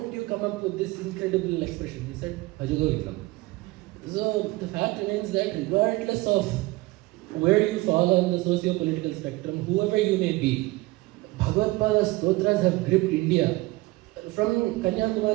you come up with this incredible expression? He said, Bhaja Govindam. So, the fact remains that regardless of where you fall on the socio-political spectrum, whoever you may be, Bhagavatpada's Stotras have gripped India from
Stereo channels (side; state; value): left; quieter; 20.9 dB